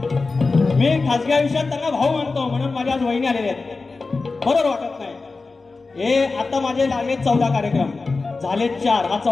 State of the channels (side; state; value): right; quieter; 3.9 dB